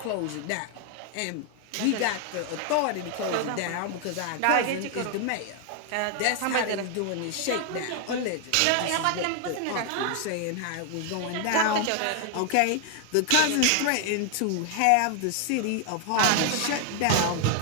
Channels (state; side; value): different; both; correlation 0.00